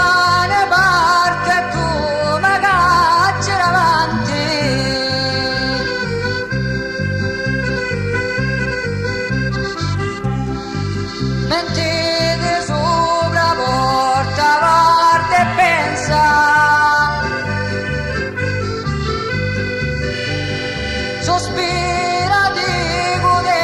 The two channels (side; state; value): both; identical; correlation 1.00